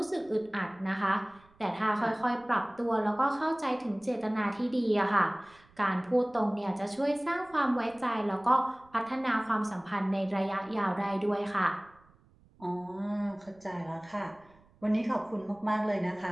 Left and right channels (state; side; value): noise; right; rumble, 29 dB below the sound